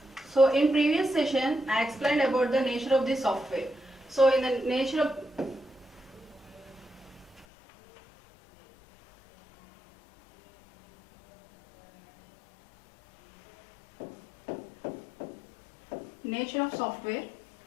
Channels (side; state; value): right; drops out; at 7.5 s